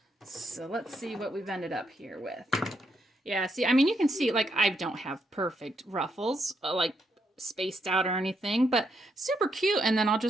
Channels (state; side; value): normal; both; correlation 0.78